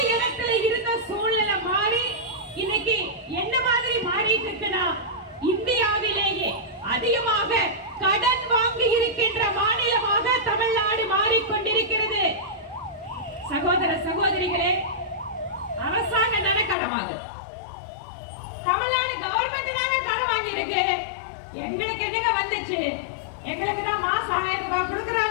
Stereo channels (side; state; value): right; drops out; at 16.8 s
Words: இடத்துல இருந்த சூழ்நிலை மாறி இன்னைக்கு என்ன மாதிரி மாறிட்டு இருக்குன்னா இந்தியாவிலேயே அதிகமாக கடன் வாங்கி இருக்கின்ற மாநிலமாக தமிழ்நாடு மாறிக்கொண்டிருக்கிறது. சகோதர சகோதரிகளே, அரசாங்கம் தானே கடன் வாங்குது, தமிழ்நாடு கவர்மெண்ட் தானே கடன் வாங்கி இருக்கு. எங்களுக்கு என்னங்க வந்துச்சு? எங்களுக்கு தான் மாசம் 1000 ரூபாய்